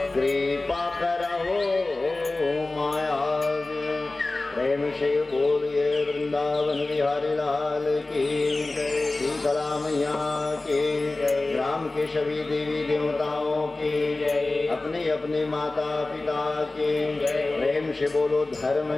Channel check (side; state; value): right; quieter; 3.1 dB